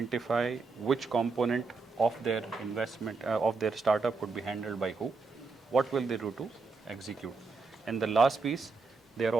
which component of their investment, of their startup would be handled by who, what will they do to execute. And the last piece, they are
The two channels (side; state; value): left; quieter; 4.3 dB